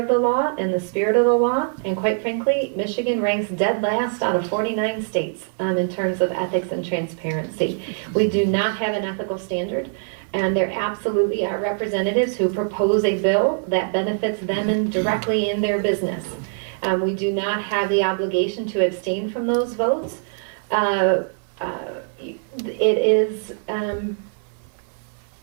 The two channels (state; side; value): silent; left; digital silence